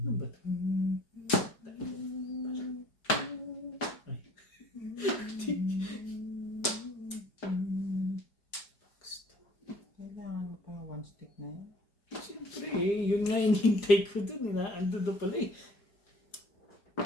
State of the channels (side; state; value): right; late; 4.9 ms